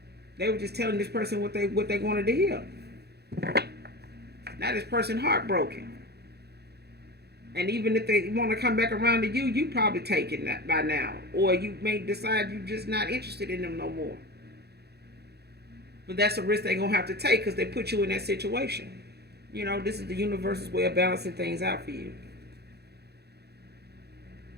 They were just telling this person what they wanted to hear. Now this person heartbroken. And even if they want to come back around to you, you probably taken that by now. Or you may decide you're just not interested in them no more. But that's a risk they're going to have to take because they put you in that situation. This is the universe's way of balancing things out for you.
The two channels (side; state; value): left; late; 0.48 ms